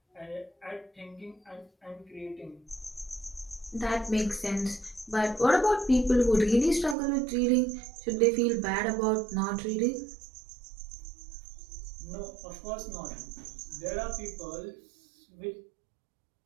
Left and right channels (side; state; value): left; drops out; at 7.0 s